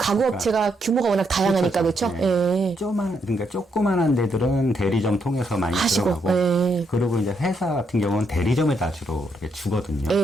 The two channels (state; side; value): normal; both; correlation 0.77